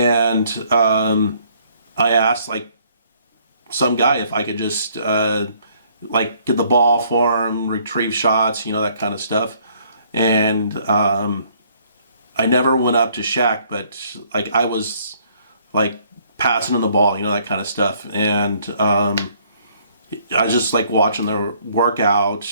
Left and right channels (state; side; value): inverted; both; correlation -0.63